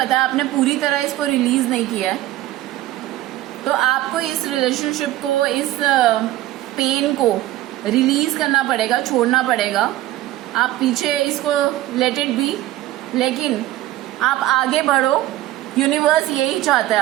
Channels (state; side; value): quieter; left; 15.5 dB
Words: है आपने पूरी तरह इसको रिलीज नहीं किया है, तो आपको इस रिलेशनशिप को, इस पेन को रिलीज करना पड़ेगा, छोड़ना पड़ेगा। आप पीछे इसको लेट इट बी, लेकिन आप आगे बढ़ो। यूनिवर्स यही चाहता है